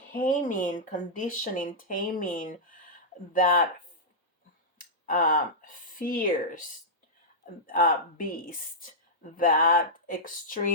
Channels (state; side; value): normal; both; correlation -0.11